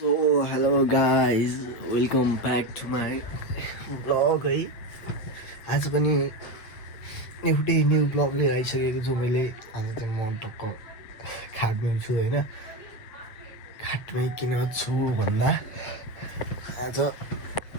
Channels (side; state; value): right; late; 8.3 ms